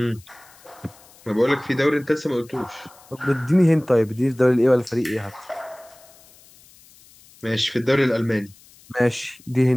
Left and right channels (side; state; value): left; noise; hiss, 26 dB below the sound